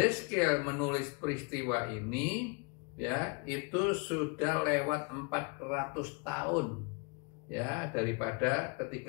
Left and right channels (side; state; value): right; quieter; 32.4 dB